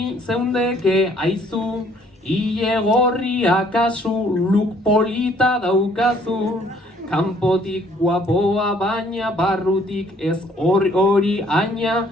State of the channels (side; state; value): both; normal; correlation 0.61